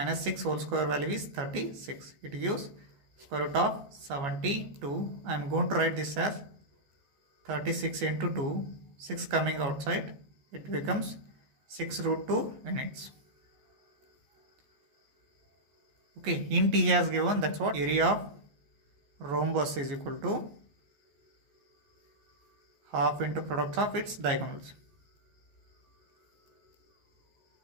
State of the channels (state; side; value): late; left; 14 ms